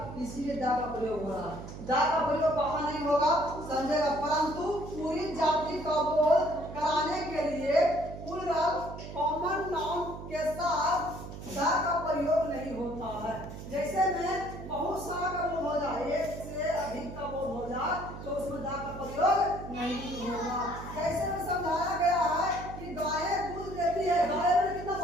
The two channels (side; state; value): right; noise; hum, 11 dB below the sound